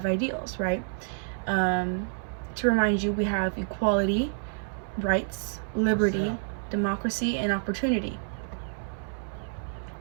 ideals, right? Um, to remind you, we have equality, rights, liberty, democracy, and opportunity.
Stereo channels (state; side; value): silent; left; 59 dB below the other